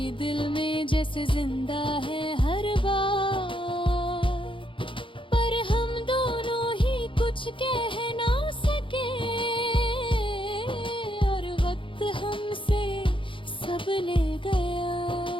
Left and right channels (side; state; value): right; late; 0.25 ms